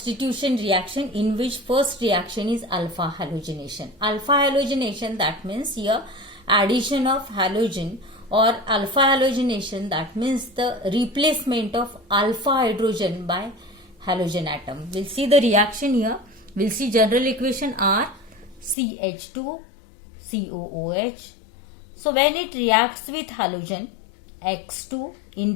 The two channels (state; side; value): drops out; right; at 18.8 s